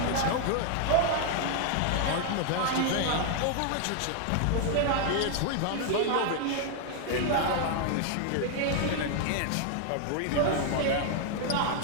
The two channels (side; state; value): both; different; correlation 0.00